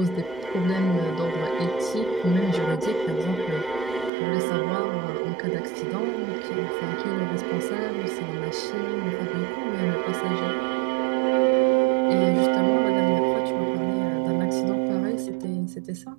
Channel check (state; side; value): drops out; left; at 4.1 s